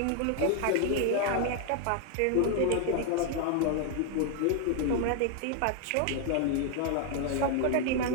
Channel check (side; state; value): both; different; correlation 0.00